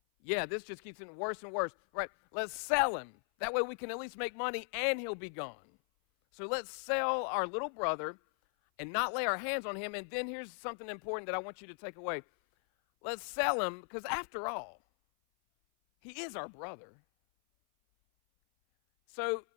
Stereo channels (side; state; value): right; silent; 53 dB below the other